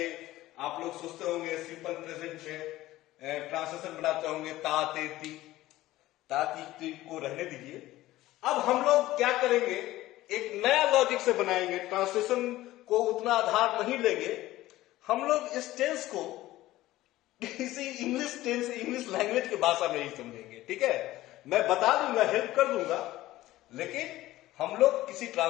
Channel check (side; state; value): right; quieter; 16.3 dB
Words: आप लोग सोचते होंगे सिंपल प्रेजेंट में ट्रांसलेशन बनाते होंगे ता ते ती को रहने दीजिए। अब हम लोग क्या करेंगे, एक नया लॉजिक से बनाएंगे। ट्रांसलेशन को उतना आधार नहीं लेंगे हम लोग, इस टेंस को किसी इंग्लिश टेंस, इंग्लिश लैंग्वेज की भाषा में ही समझेंगे, ठीक है। मैं बता दूंगा, हेल्प कर दूंगा, लेकिन हम लोग किसी